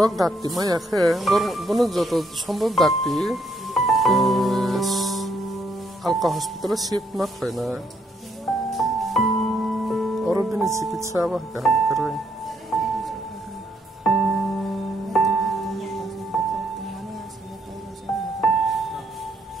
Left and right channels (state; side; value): normal; both; correlation 0.72